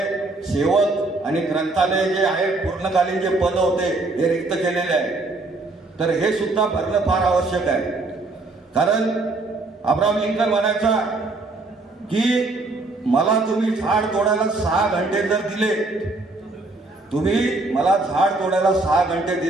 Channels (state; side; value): quieter; left; 3.2 dB